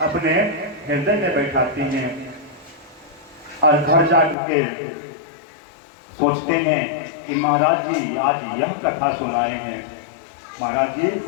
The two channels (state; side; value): drops out; right; at 4.4 s